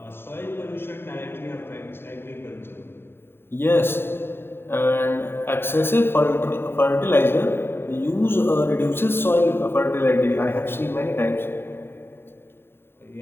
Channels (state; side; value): late; right; 0.11 ms